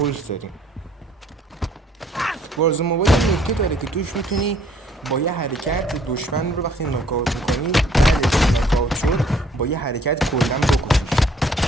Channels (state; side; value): normal; both; correlation 0.60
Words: داریم. وارزون موبایل نکته داره که توش میتونی با یه حرکت دشمن رو وقتی ناکاوت میکنی، بعدش ناکاوت شد با یه حرکت کلا بکشیش.